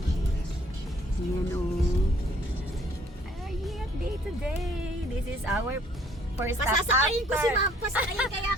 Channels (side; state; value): both; normal; correlation 0.61